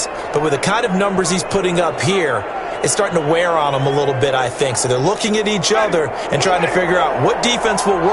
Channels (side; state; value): both; identical; correlation 1.00